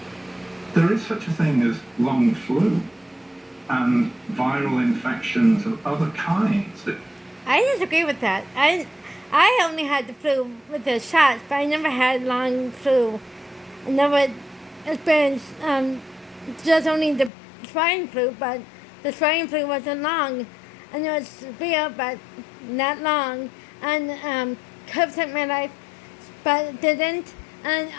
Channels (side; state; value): right; drops out; at 17.3 s